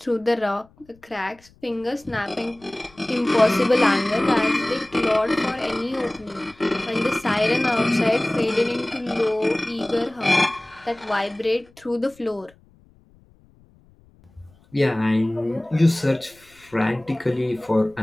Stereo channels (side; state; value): left; noise; rumble, 29 dB below the sound